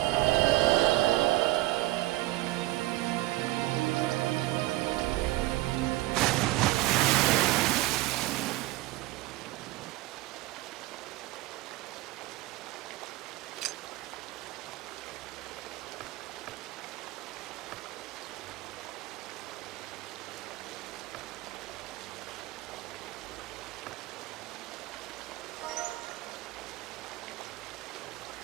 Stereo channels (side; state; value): left; quieter; 18.3 dB